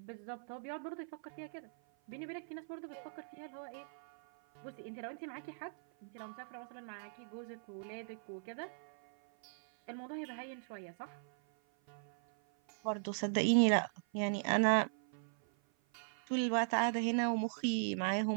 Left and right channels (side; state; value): left; silent; 52 dB below the other